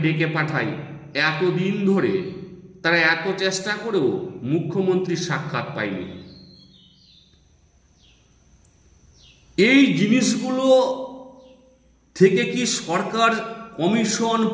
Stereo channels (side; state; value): both; identical; correlation 1.00